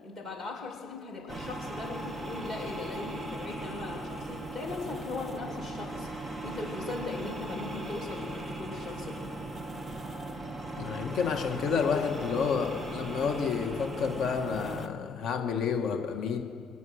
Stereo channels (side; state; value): right; quieter; 3.7 dB